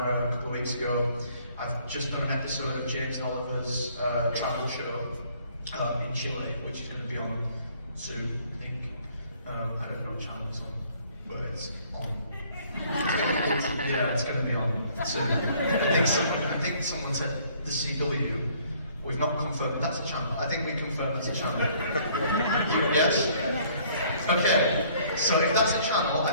a couple of weeks ago. I've just done an episode of James and Oliver's travel show in Chile, which is going to be on soon, I think. I don't know what channel it's on, but it's on. Yeah, it's going to be on soon. I think someone said the CW. We've not confirmed that's a channel. I think we confirmed it's a channel. Yes? Okay. So if that's a channel,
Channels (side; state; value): both; inverted; correlation -0.60